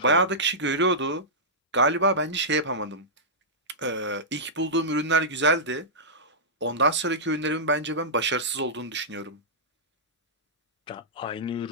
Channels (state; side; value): normal; both; correlation -0.14